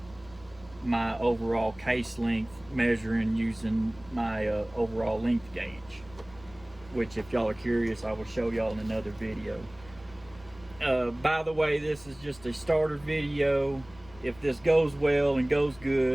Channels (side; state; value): left; noise; rumble, 22 dB below the sound